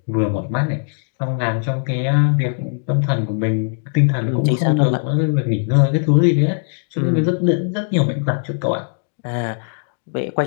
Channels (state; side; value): silent; right; digital silence